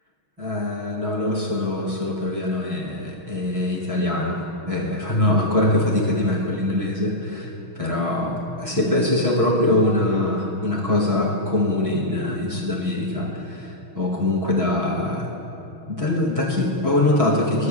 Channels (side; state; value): left; late; 6.3 ms